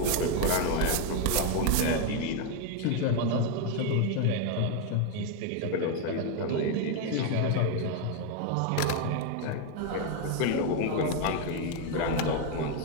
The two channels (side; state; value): both; different; correlation 0.01